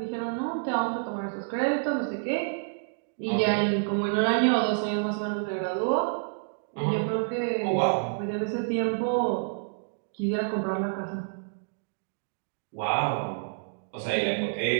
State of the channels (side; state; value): left; silent; digital silence